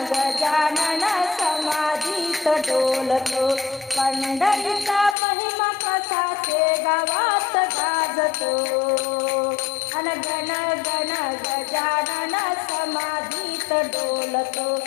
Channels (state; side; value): drops out; right; at 5.2 s